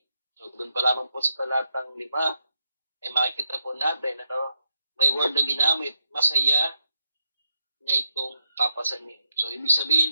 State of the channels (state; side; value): inverted; both; correlation -0.82